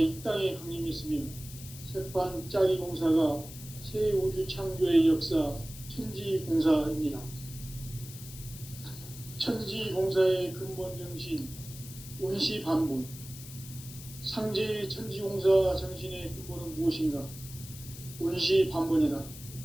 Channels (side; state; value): left; noise; hiss, 15 dB below the sound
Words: 이 땅에 강림했으며 새판짜기 공사가 새 우주 창조의 역사 천지공사입니다. 천지공사의 근본 정신 운시반본. 상제의 천지공사 정신의 근본은 무엇인가? 운시반본이다.